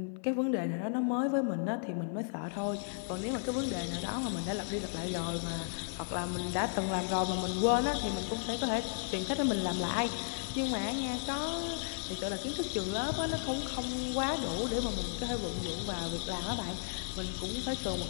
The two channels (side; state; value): right; silent; 55 dB below the other